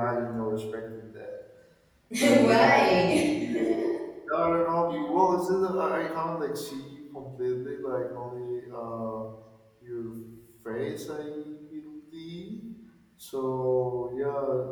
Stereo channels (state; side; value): identical; both; correlation 1.00